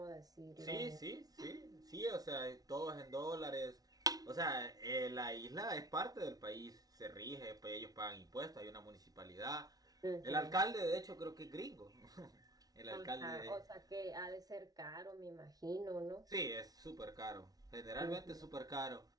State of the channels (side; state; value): left; late; 0.18 ms